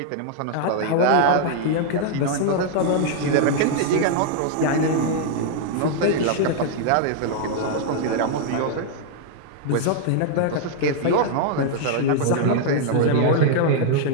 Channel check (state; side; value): different; both; correlation -0.01